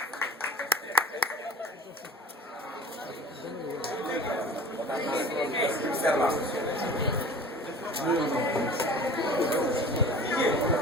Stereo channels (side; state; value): both; normal; correlation 0.41